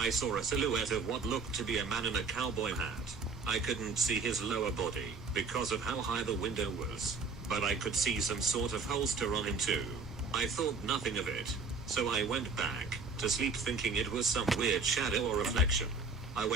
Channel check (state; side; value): quieter; left; 4.3 dB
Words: saw a silhouette of what looked to be a man in a cowboy hat. I couldn't see his lower body because of how high the window was, but I could see some sort of holster on him too. I thought nothing of it, so I went back to sleep thinking it was some weird shadow or reflection. I